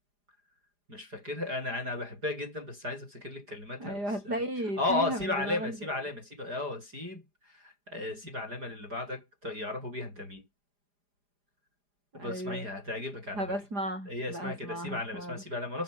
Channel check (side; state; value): left; late; 4.9 ms